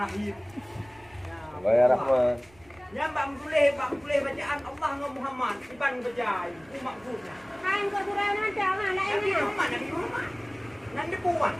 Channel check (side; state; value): right; noise; rumble, 27 dB below the sound